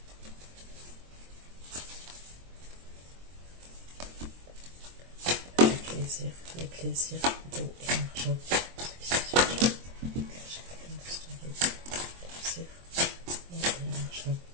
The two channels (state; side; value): late; left; 23 ms